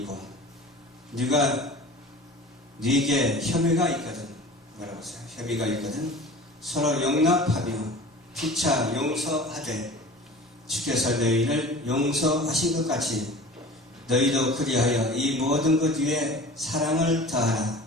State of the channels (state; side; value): normal; both; correlation 0.40